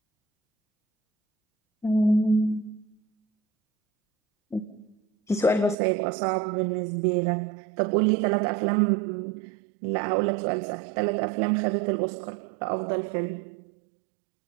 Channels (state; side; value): drops out; left; at 5.8 s